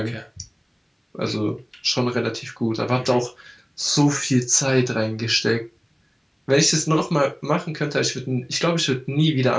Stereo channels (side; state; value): both; identical; correlation 1.00